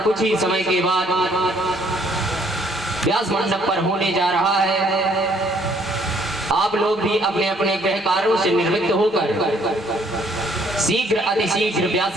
कुछ ही समय के बाद व्यास मंडप पर होने जा रहा है। आप लोग भी अपने अपने गृह कार्यों से निवृत्त होकर शीघ्र अतिशीघ्र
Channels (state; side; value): normal; both; correlation 0.64